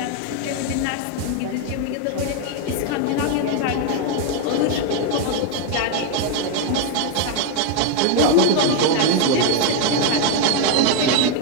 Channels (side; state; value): both; different; correlation 0.01